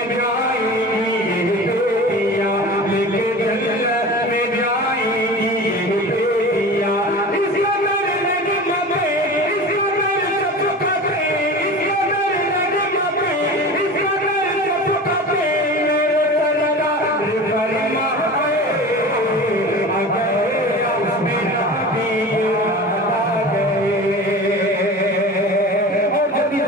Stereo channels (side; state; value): both; normal; correlation 0.34